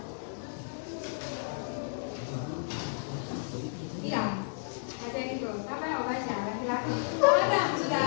Iya, baca itu. Siapa yang mau baca? Laki-laki. Oh, Adam, sudah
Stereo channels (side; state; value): right; silent; digital silence